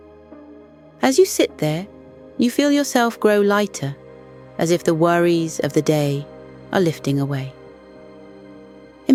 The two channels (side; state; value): both; identical; correlation 1.00